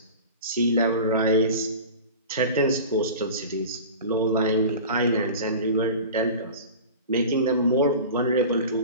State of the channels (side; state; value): both; inverted; correlation -0.35